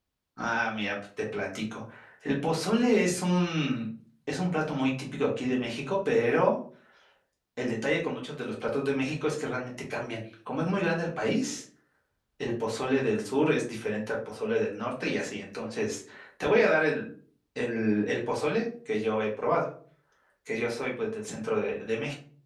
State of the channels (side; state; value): both; identical; correlation 1.00